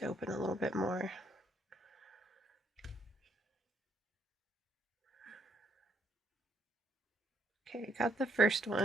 open a little bit more. Okay, got the first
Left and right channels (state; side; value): normal; both; correlation 0.72